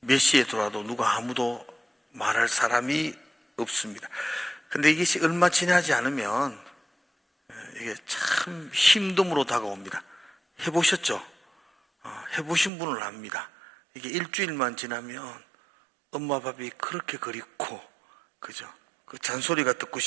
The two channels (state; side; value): drops out; left; at 12.7 s